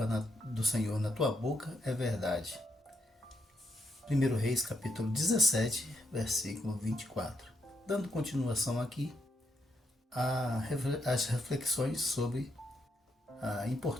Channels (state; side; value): normal; both; correlation 0.78